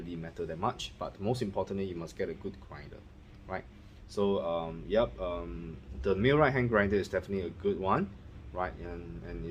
matter that much, but most importantly, you must get a good grinder, right? So the millwright hand grinder is definitely a good one, right? And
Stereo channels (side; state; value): both; identical; correlation 1.00